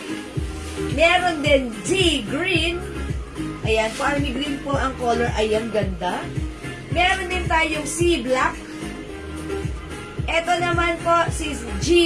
Meron din D green. Ayan, po army green po ang color. Ayan, ganda. Meron din tayong C black. Ito naman po si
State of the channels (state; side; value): identical; both; correlation 1.00